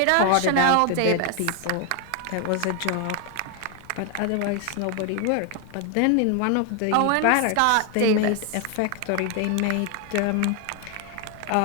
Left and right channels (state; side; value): different; both; correlation 0.01